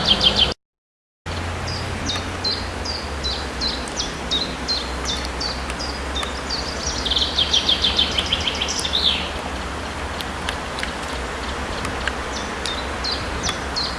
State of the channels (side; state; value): both; identical; correlation 1.00